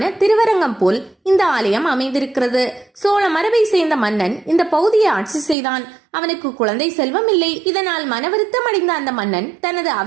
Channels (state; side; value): drops out; left; at 5.6 s